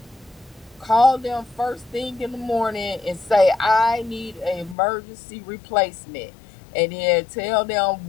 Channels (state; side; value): drops out; right; at 4.8 s